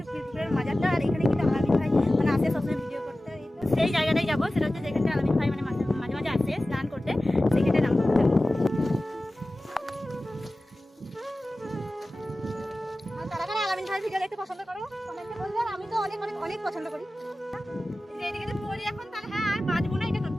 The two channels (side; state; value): both; normal; correlation 0.96